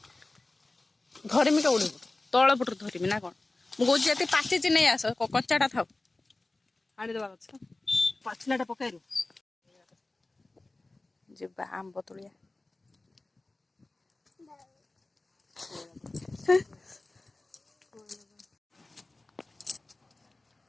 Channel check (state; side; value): quieter; right; 3.0 dB